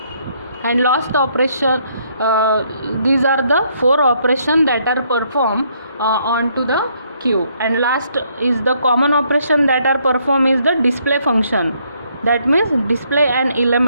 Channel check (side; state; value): both; inverted; correlation -0.70